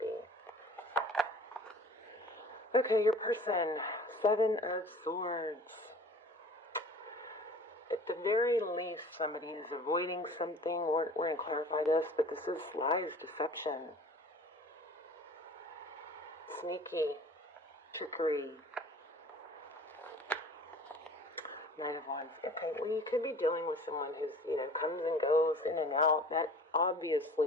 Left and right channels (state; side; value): normal; both; correlation 0.45